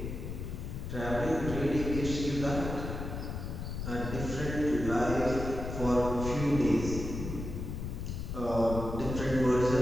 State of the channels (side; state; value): left; noise; rumble, 5 dB below the sound